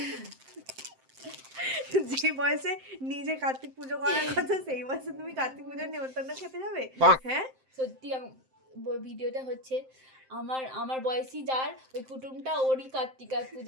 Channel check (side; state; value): left; late; 7.7 ms